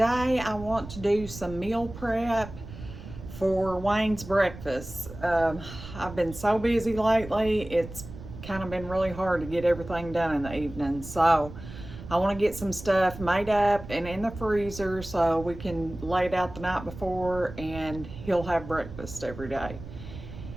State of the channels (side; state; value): right; noise; rumble, 13 dB below the sound